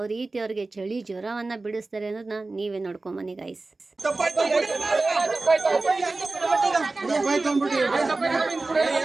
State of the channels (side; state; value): left; quieter; 3.4 dB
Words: ರೀತಿ ಅವ್ರಿಗೆ ಚಳಿ ಜ್ವರವನ್ನು ಬಿಡಿಸ್ತಾರೆ ಅನ್ನೋದನ್ನ ನೀವೇ ನೋಡ್ಕೊಂಬನ್ನಿ ಗೈಸ್.